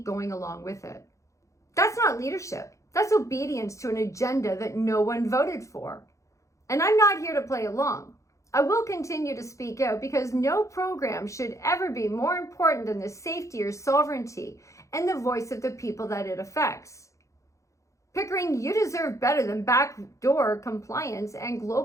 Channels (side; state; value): right; late; 0.15 ms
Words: going along with it. That's not leadership. That's obedience to an agenda that no one voted for. And I'm not here to play along. I will continue to speak out because no program should ever be more important than the safety or sovereignty and the voice of the people that it affects. Pickering, you deserve better than backdoor compliance and